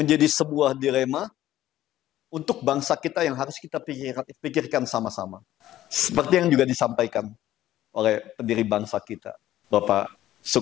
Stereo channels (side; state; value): right; quieter; 13.7 dB